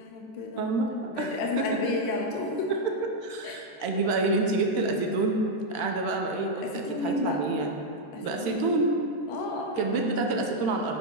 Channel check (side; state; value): right; late; 13 ms